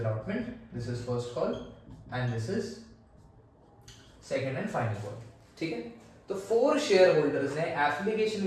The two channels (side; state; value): both; identical; correlation 1.00